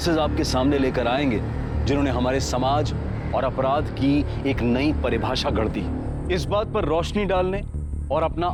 आपके सामने लेकर आएंगे जिन्होंने हमारे समाज और अपराध की एक नई परिभाषा गढ़ दी। इस बात पर रोशनी डालने और अपना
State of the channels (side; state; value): both; identical; correlation 1.00